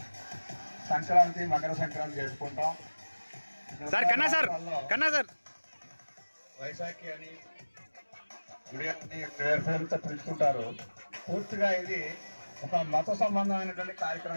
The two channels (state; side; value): inverted; both; correlation -1.00